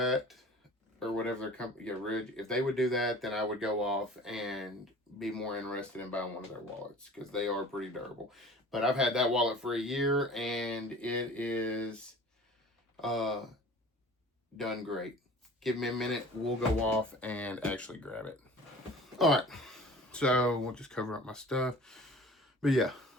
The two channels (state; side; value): normal; both; correlation 0.44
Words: or whatever their company, Ridge, if they would do that, then I would go off and be more interested in buying one of their wallets because they are pretty durable. But I've had that wallet for a year and it is done great. Give me a minute, we'll go off and actually grab it. All right, so we'll just cover up my stuff. But yeah,